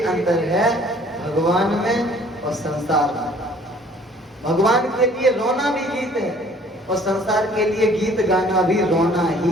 अंतर है भगवान में और संसार में। भगवान के लिए रोना भी गीत है और संसार के लिए गीत गाना भी रोना ही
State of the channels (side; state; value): both; normal; correlation 0.55